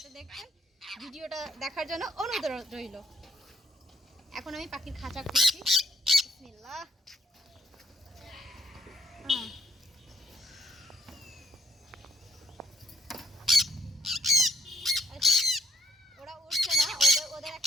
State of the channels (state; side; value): normal; both; correlation 0.70